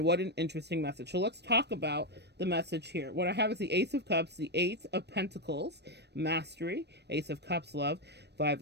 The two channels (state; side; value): late; left; 0.49 ms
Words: what an interesting message. So let's talk about the message here. What I have is the Ace of Cups, the Eight of Pentacles, Mastery, Ace of Cups, Love, Five